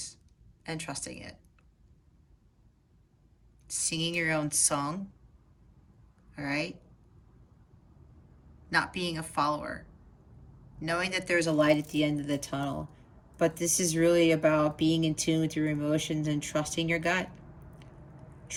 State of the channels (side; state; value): both; identical; correlation 1.00